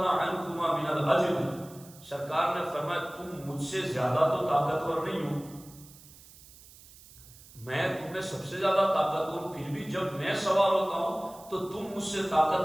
عنكما من الاجر، سرکار نے فرمایا تم مجھ سے زیادہ تو طاقتور نہیں ہو، میں تم میں سب سے زیادہ طاقتور ہوں، پھر بھی جب میں سوار ہوتا ہوں تو تم مجھ سے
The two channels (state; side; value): noise; right; hiss, 21 dB below the sound